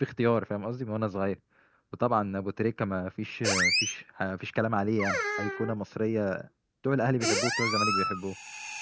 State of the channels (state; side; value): identical; both; correlation 1.00